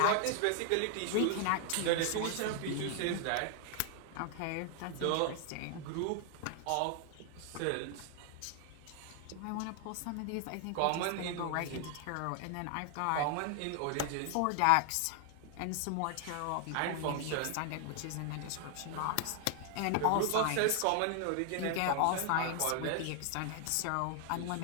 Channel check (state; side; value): different; both; correlation 0.00